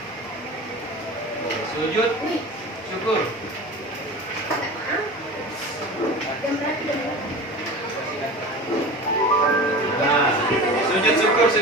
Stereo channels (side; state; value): both; normal; correlation 0.34